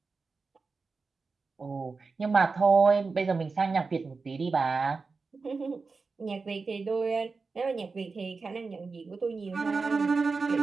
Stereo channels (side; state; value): left; quieter; 4.4 dB